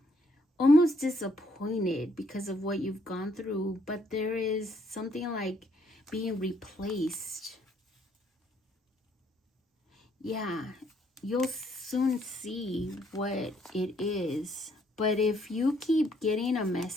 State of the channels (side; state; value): both; normal; correlation 0.68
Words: disappointed because of what you've gone through, but there is something like being replaced. Yeah, you'll soon see what it is. But if you keep getting a